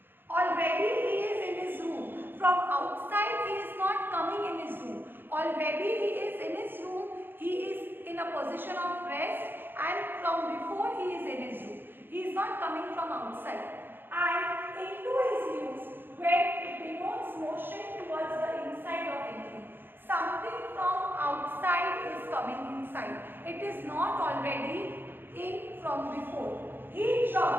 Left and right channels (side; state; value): left; late; 0.099 ms